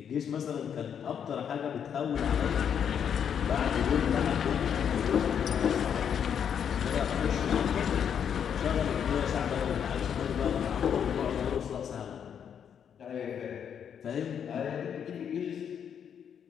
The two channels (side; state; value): right; quieter; 8.1 dB